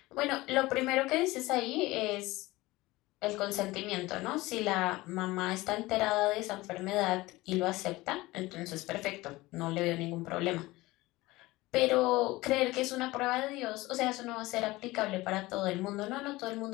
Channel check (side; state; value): right; quieter; 19.8 dB